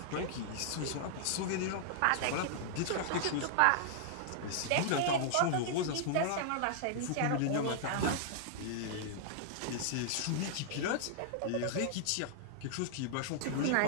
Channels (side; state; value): both; different; correlation -0.01